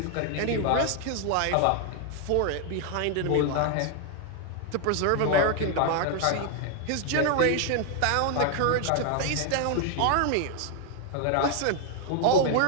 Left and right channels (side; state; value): both; different; correlation 0.00